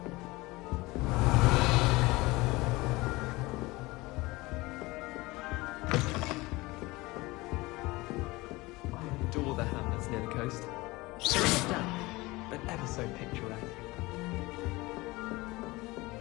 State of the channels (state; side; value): quieter; right; 21.6 dB